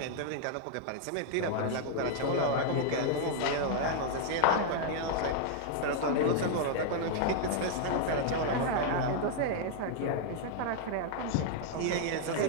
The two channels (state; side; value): different; both; correlation 0.00